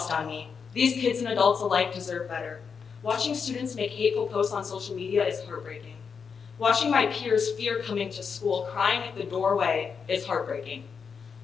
on me. These kids and adults alike deserve better. Watching students make hateful posts on social media is heartbreaking. Watching my peers fear coming to school, crying at the doorway, is heartbreaking.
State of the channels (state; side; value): quieter; right; 6.1 dB